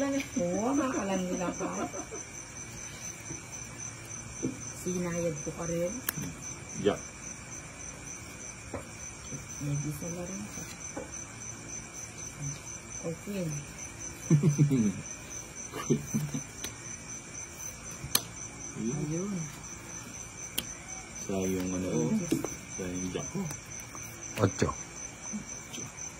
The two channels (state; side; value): noise; right; hum, 26 dB below the sound